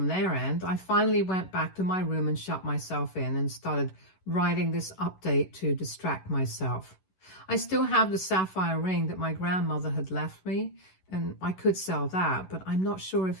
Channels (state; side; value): late; right; 11 ms